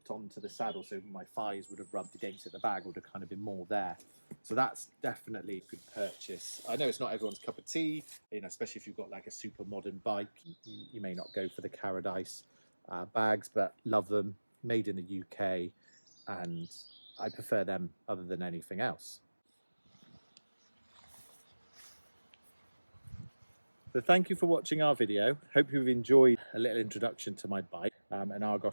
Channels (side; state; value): both; inverted; correlation -1.00